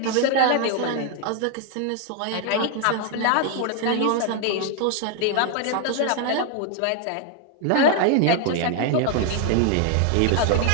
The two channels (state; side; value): different; both; correlation 0.00